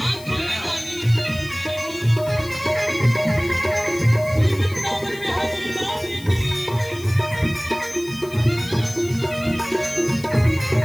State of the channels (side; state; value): left; noise; hiss, 19 dB below the sound